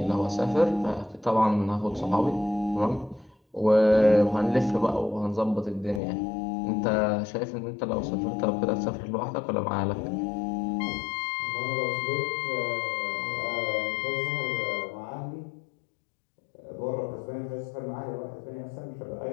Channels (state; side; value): drops out; right; at 6.0 s